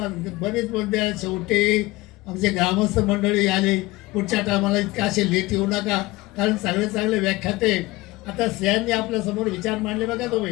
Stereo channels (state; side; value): quieter; right; 20.2 dB